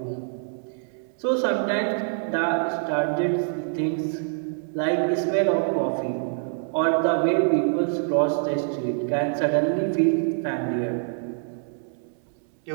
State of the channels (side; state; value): left; silent; 62 dB below the other